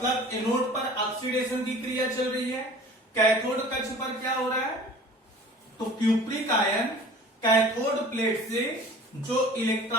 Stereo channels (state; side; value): normal; both; correlation 0.44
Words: एनोड पर ऑक्सीडेशन की क्रिया चल रही है। कैथोड कक्ष पर क्या हो रहा है? तो क्यूप्रिक आयन कैथोड प्लेट से जो